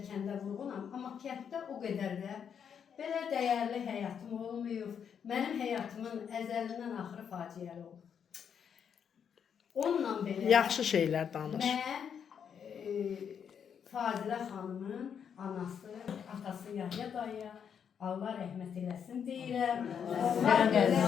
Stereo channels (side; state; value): right; quieter; 7.6 dB